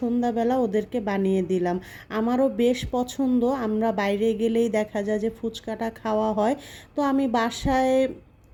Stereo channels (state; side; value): identical; both; correlation 1.00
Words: ওদেরকে বানিয়ে দিলাম। আমারও বেশ পছন্দ, আমরা বাইরে গেলেই দেখা যায় যে ফুচকাটা খাওয়া হয়। তো আমি বাসায়